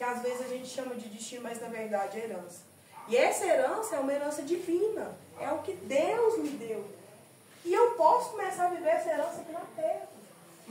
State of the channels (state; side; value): identical; both; correlation 1.00